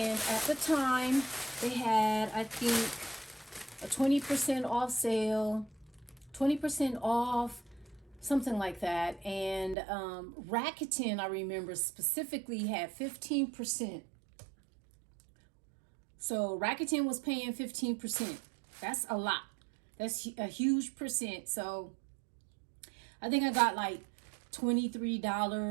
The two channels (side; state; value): left; drops out; at 9.8 s